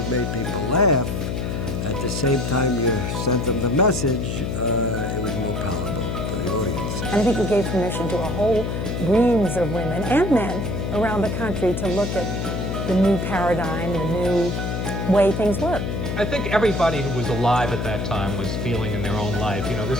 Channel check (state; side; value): noise; left; hum, 2 dB below the sound